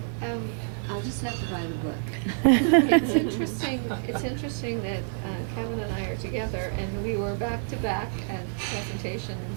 I'll just have to buy the book. It's interesting. It's interesting that Kevin and I are together, and we were back to back at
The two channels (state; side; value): silent; left; digital silence